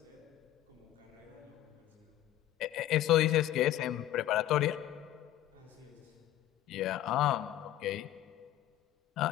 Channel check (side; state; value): right; quieter; 13.2 dB